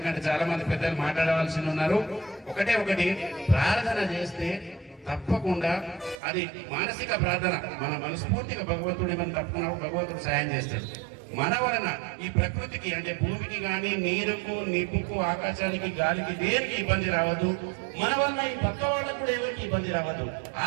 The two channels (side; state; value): left; drops out; at 6.2 s